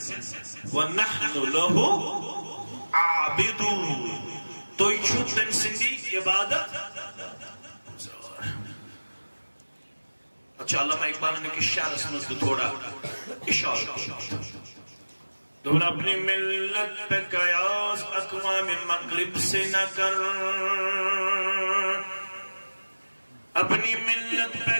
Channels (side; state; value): both; inverted; correlation -1.00